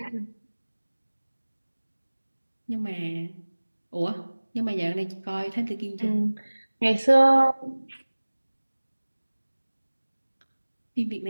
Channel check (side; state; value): both; inverted; correlation -1.00